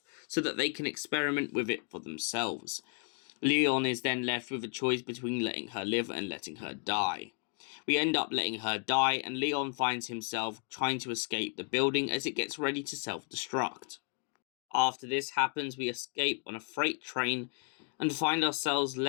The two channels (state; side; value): quieter; right; 37.5 dB